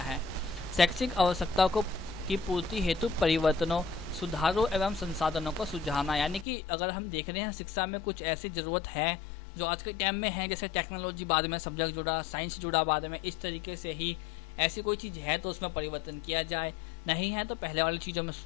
है। शैक्षिक आवश्यकताओं की पूर्ति हेतु परिवर्तनों, सुधारों एवं संसाधनों को सुझाना, यानी कि अगर हम देख रहे हैं शिक्षा में कुछ ऐसी ज़रूरत है जो आज के टाइम में है, जैसे टेक्नोलॉजी बाद में सब्जेक्ट जुड़ा, साइंस जुड़ा बाद में, इस तरीके से ही ऐसी कोई चीज़ है तो उसमें परिवर्तन किया जाए, नहीं है तो पहले वाली चीज़ों में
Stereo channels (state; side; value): drops out; right; at 6.5 s